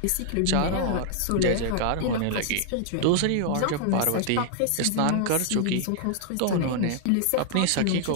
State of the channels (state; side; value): different; both; correlation 0.00